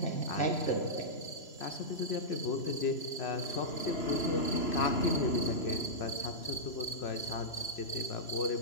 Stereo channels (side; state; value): right; late; 3.0 ms